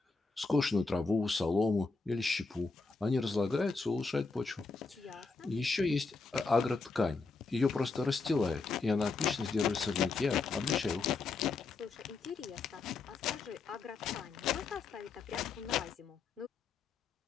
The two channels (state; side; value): quieter; right; 4.2 dB